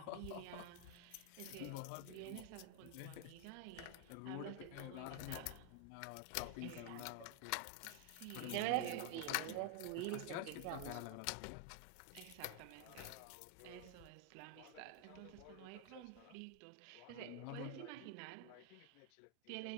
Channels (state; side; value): different; both; correlation 0.00